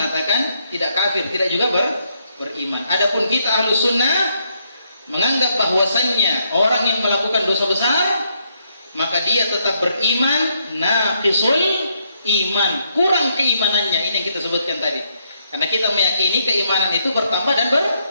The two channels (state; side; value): inverted; both; correlation -0.74